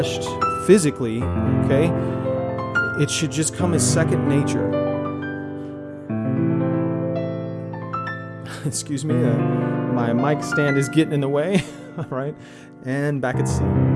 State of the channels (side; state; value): both; identical; correlation 1.00